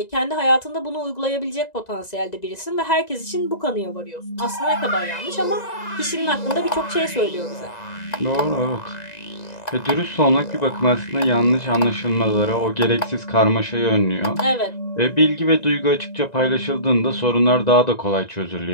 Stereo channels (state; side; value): late; right; 1.9 ms